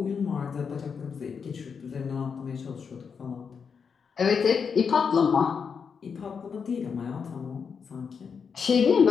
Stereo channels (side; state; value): right; quieter; 6.2 dB